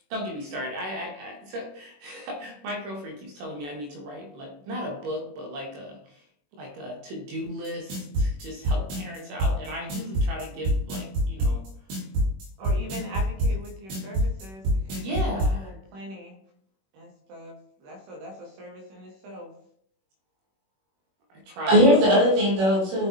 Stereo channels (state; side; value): late; left; 21 ms